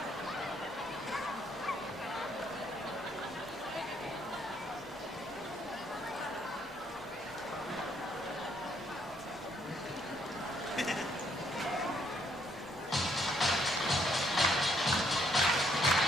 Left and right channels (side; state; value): left; noise; hum, 29 dB below the sound